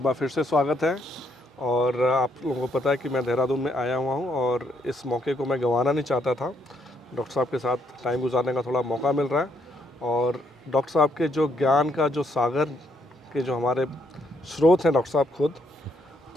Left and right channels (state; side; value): normal; both; correlation 0.73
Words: बार फिर से स्वागत है। और आप लोगों को पता है कि मैं देहरादून में आया हुआ हूँ और इस मौके को मैं गंवाना नहीं चाहता था। डॉक्टर साहब के साथ टाइम गुजारने का थोड़ा मौका मिल रहा है और डॉक्टर साहब के जो ज्ञान का जो सागर के जो हमारे स्रोत हैं डॉक्टर साहब खुद,